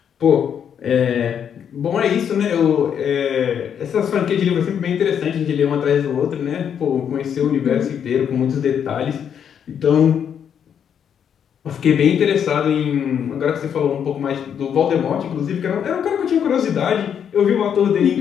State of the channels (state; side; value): quieter; right; 8.3 dB